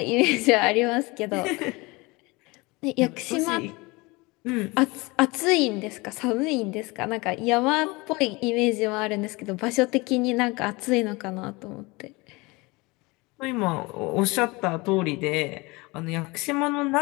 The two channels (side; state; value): right; quieter; 24.5 dB